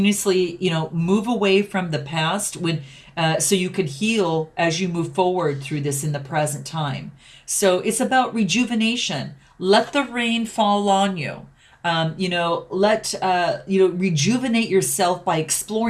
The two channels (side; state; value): both; identical; correlation 1.00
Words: move away from the past so you can heal as you move forward through this in the present time. So it's about rejuvenation. Let the rain fall on you. Rejuvenate yourself by